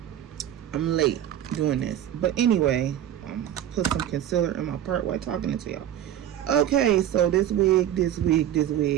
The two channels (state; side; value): quieter; left; 11.2 dB